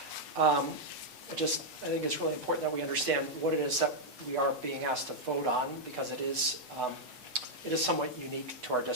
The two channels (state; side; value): normal; both; correlation -0.03